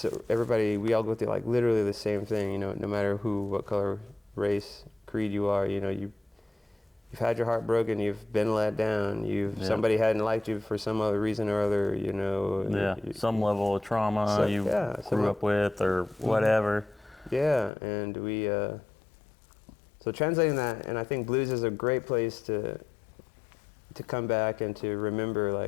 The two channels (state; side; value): drops out; right; at 17.7 s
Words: everybody, we all go through like literally the same thing, you know, no matter who, what color, race, creed you are, you know, you've had your heart broken, you've been let down, somebody hadn't liked you for some other reason or other, you know. Yeah, some level of trauma grew up with or whatever. Yeah, and we, so translating that, and I think blues is a great place to come back and to remember,